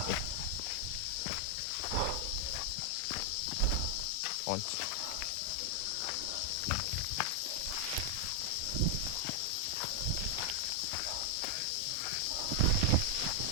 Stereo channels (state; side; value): different; both; correlation 0.00